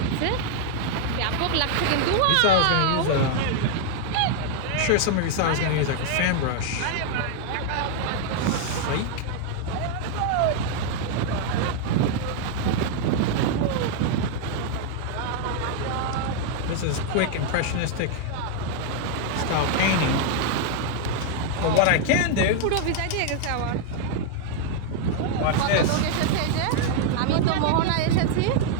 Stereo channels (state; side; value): different; both; correlation 0.00